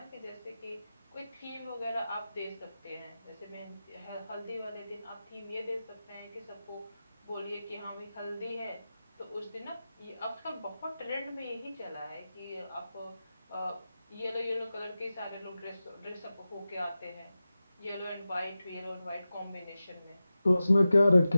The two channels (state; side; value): inverted; both; correlation -0.94